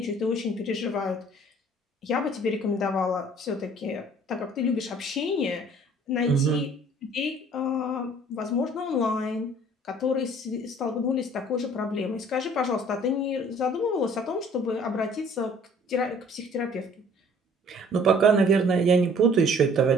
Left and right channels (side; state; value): both; normal; correlation 0.54